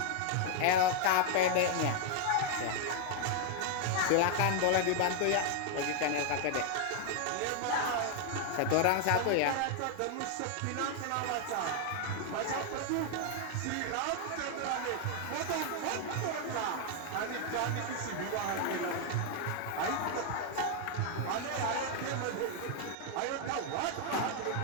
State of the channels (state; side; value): different; both; correlation 0.00